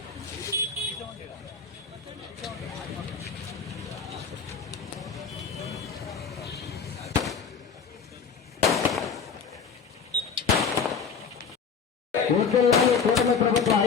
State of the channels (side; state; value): right; quieter; 6.0 dB